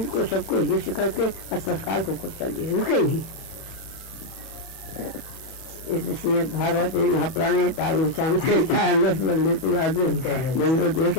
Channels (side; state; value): right; late; 31 ms